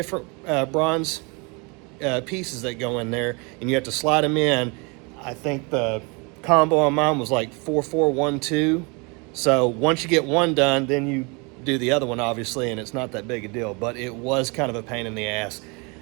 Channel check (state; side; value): quieter; left; 30.3 dB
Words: bronze pieces that go in there, and you have to slide them in. I think the combo on mine was like 4412. So once you get one done, then you do the other one, obviously, and it's not that big a deal, but it was kind of a pain in the ass.